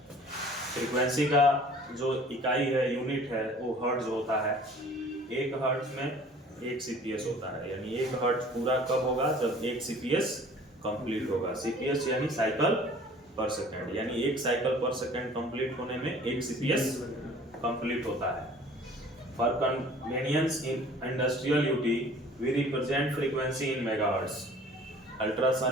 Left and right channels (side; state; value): both; normal; correlation 0.49